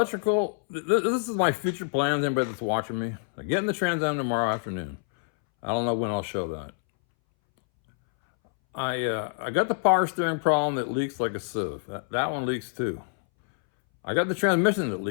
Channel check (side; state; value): right; silent; 60 dB below the other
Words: this is my future plans, anybody that's watching me. I'm getting the Trans Am tomorrow afternoon. I don't know when I'll show that. I got the power steering problem that leaks like a sieve. That one leaks too. I got the transmission that